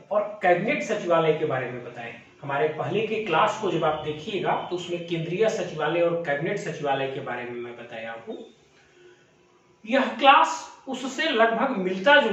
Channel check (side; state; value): both; identical; correlation 1.00